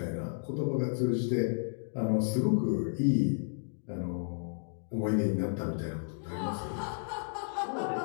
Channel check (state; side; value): silent; right; digital silence